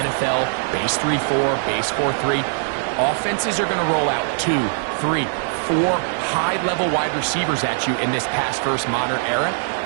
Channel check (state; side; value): silent; left; digital silence